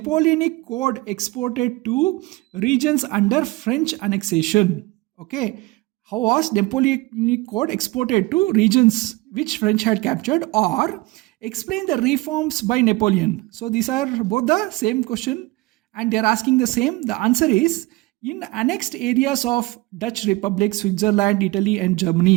Code exported to regions under French annexation? Okay. How was Napoleonic Code exported to regions which French had captured? Or explain the reforms by Napoleon. So these are both the same question and they are asking the same. The answer is in annexed areas of Dutch Republic, Switzerland, Italy and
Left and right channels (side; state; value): left; quieter; 21.5 dB